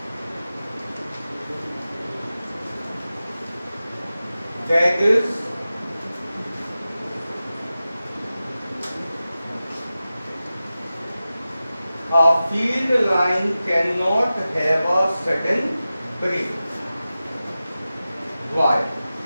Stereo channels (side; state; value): both; inverted; correlation -0.95